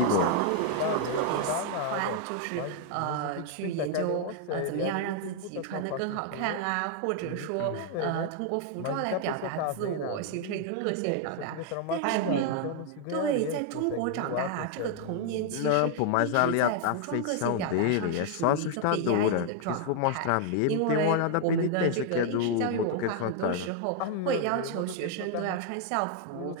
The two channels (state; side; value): different; both; correlation 0.00